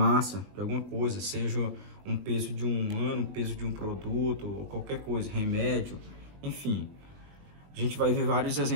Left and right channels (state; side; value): late; left; 20 ms